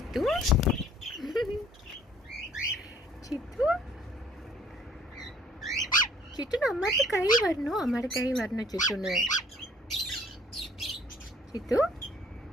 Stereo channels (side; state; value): both; normal; correlation 0.56